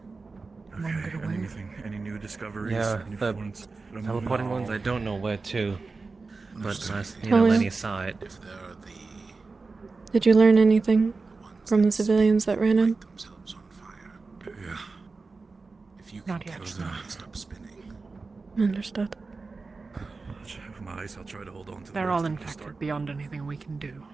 Okay, and anything? Any new discoveries? Yeah, Any the ones that I'm teleporting moving? ones, I don't know where to. But Understood. you know, Talia. Lenny saw it. If they're the Did you learn anything ones from the that civilians that ran in? light themselves on fire, Yeah. if you can Not yet. catch them, they stop spinning. Understood. With my eyes, I'll try to hold on to the They're rest all until we infected start. beyond anything we can do.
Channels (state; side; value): quieter; left; 4.0 dB